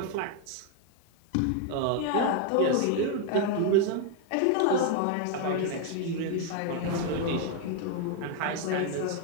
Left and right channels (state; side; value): different; both; correlation 0.01